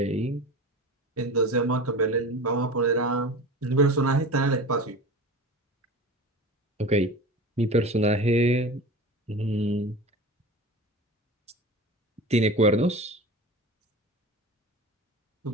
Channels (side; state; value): both; normal; correlation 0.32